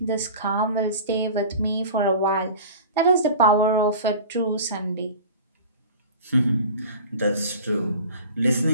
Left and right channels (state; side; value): inverted; both; correlation -0.39